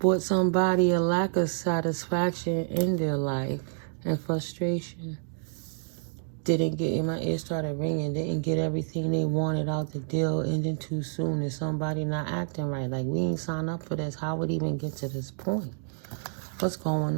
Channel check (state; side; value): silent; left; digital silence